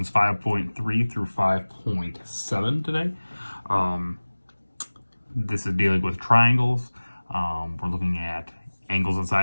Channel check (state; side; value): inverted; both; correlation -1.00